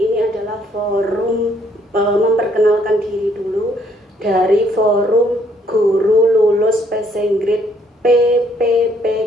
ini adalah forum memperkenalkan diri dulu dari Forum Guru Lulus Passing Grade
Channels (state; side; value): normal; both; correlation 0.67